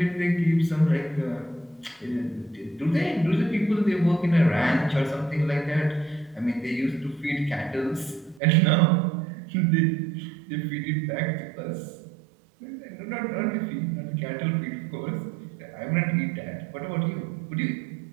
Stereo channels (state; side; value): drops out; left; at 8.4 s